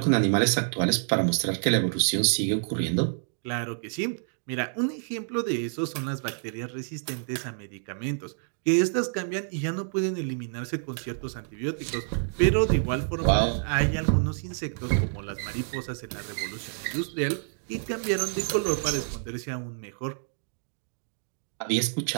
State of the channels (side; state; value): left; silent; digital silence